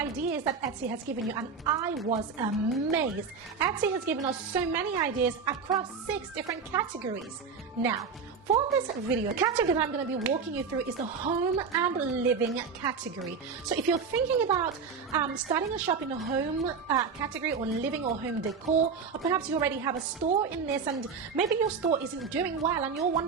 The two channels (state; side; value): quieter; left; 5.6 dB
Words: that Etsy has given you, and I was amazed. Etsy has given us so many ideas across 6 different categories. Now, for this video, the category that I'm going to be walking you through is the home and living category. So if you're thinking about starting a shop in the home category, or living or home decor, or perhaps you already have a store in this and maybe your store isn't doing well and you're